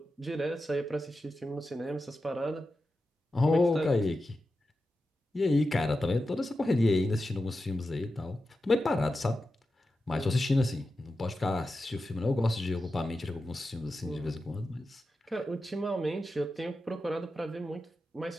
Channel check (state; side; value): normal; both; correlation 0.91